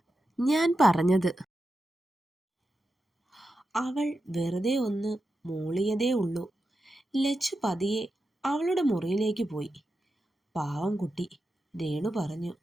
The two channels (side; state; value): both; normal; correlation 0.89